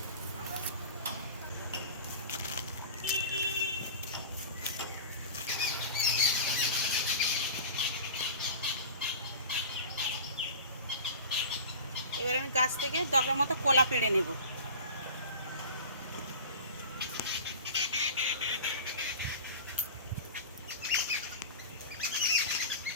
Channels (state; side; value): inverted; both; correlation -0.35